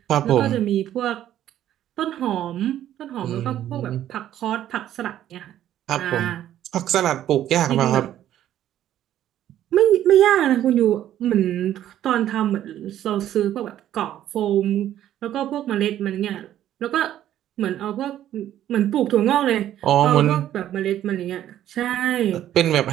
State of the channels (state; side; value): quieter; left; 11.9 dB